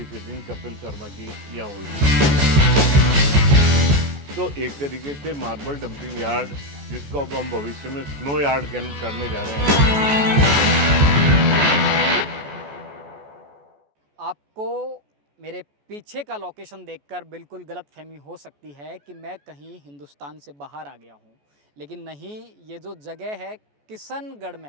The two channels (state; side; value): late; left; 14 ms